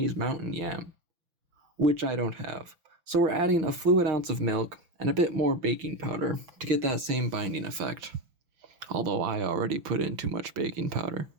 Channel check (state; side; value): late; left; 6.0 ms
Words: mountain yam, which I don't have. So we're adding a fluid ounce of milk and a bit more baking powder to get that same binding effect. Although I already put in too much baking powder.